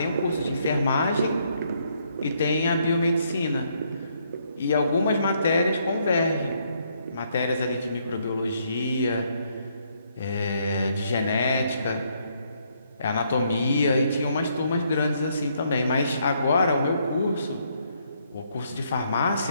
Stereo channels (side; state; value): both; inverted; correlation -0.72